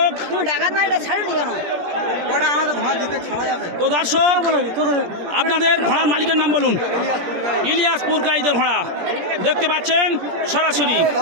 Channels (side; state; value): left; late; 17 ms